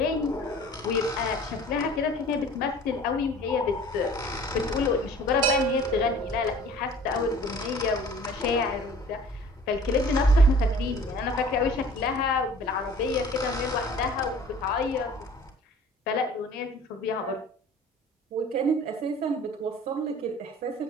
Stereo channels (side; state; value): both; normal; correlation 0.48